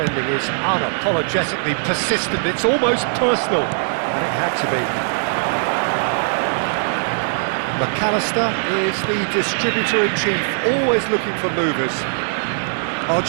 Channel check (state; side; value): silent; left; digital silence